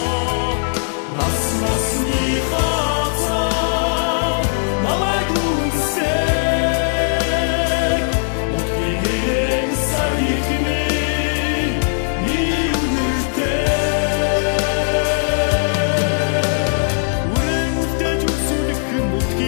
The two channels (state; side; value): silent; right; digital silence